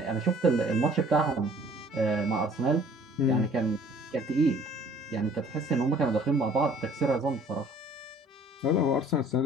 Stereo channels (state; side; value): normal; both; correlation 0.54